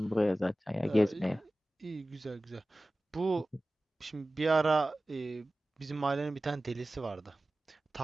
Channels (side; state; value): both; normal; correlation 0.96